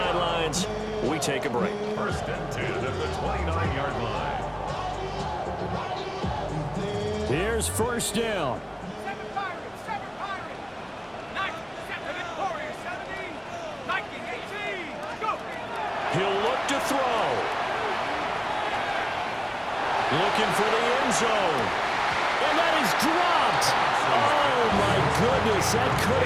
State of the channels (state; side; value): identical; both; correlation 1.00